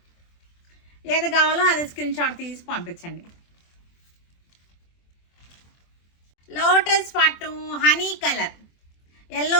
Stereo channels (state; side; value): late; right; 24 ms